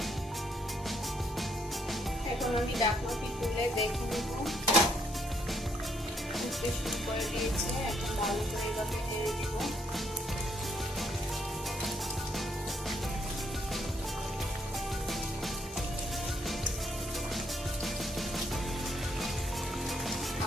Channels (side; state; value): both; normal; correlation 0.72